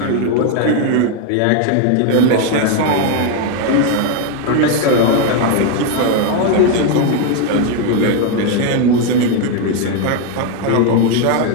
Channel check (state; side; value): different; both; correlation 0.01